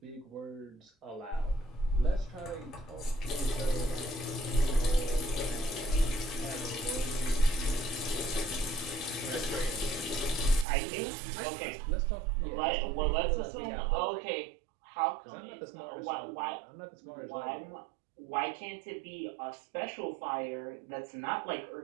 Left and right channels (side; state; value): left; drops out; at 10.7 s